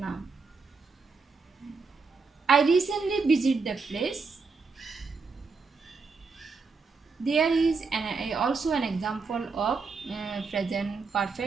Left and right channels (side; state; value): left; quieter; 4.6 dB